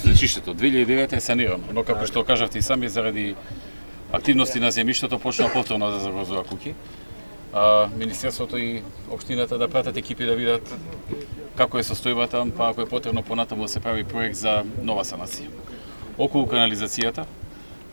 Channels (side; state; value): both; inverted; correlation -1.00